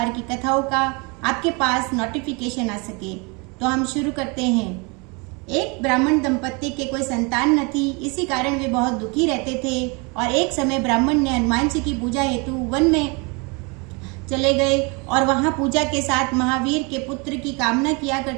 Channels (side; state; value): left; quieter; 30.4 dB